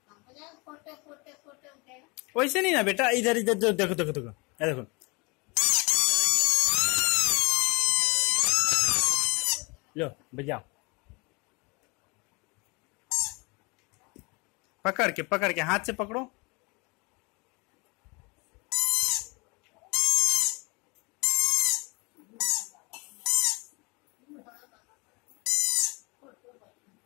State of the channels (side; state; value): right; quieter; 28.3 dB